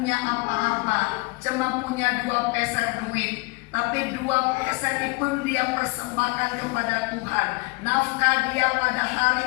apa-apa, cuma punya 2 peser duit. Tapi 2 peser itu pun dia persembahkan kepada Tuhan. Nafkah dia pada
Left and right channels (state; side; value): quieter; right; 27.0 dB